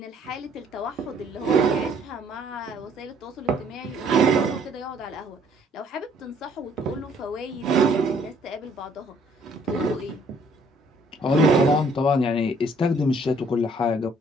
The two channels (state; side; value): normal; both; correlation 0.62